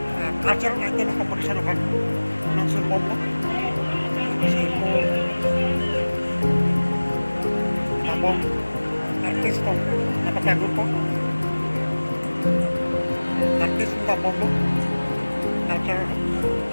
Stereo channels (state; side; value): inverted; both; correlation -1.00